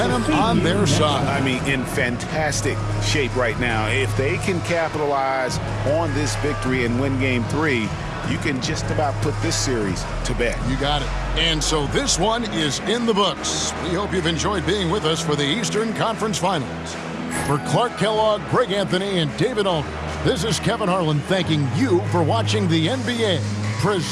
on their side. I mean, in fantastic shape right now. If they can capitalize on this victory and win game 3, you can just about put this series to bed. You got it. And so this one is in the books. We hope you've enjoyed being with us for the Eastern Conference Finals. For Clark Kellogg, Greg Anthony, and David Aldridge, this is Kevin Harlan thanking you for watching the NBA,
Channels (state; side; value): identical; both; correlation 1.00